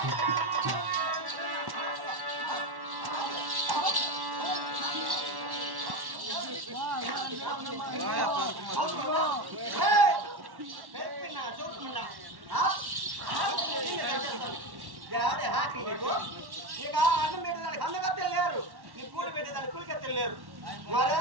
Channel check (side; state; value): left; late; 1.1 ms